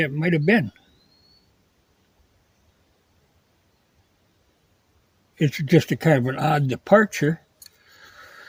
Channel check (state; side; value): identical; both; correlation 1.00